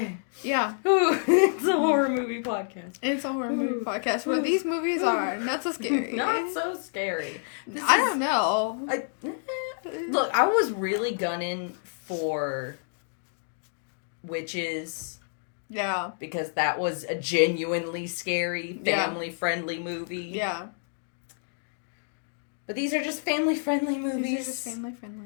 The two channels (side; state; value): right; silent; digital silence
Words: Yeah. Ooh, it's a horror movie podcast. It's a horror movie podcast where these movies are not so scary. Not so scary. I don't know. Look, I was really gunning for Witches. Yeah. Because that was a genuinely scary, family-friendly movie. Yeah. But these are just family-friendly movies. These are just